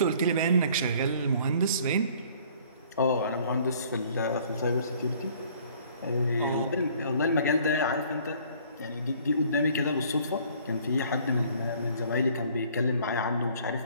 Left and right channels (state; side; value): inverted; both; correlation -0.56